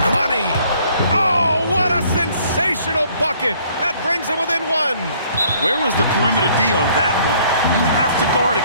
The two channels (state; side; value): inverted; both; correlation -0.60